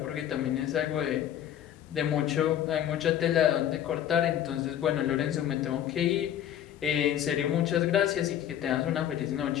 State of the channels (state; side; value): quieter; right; 10.7 dB